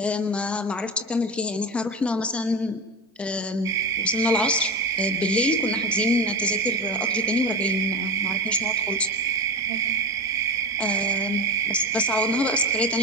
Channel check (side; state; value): both; normal; correlation 0.23